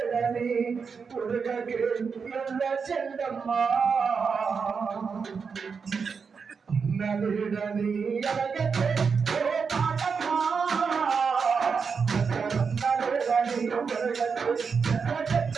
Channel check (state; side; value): quieter; left; 5.6 dB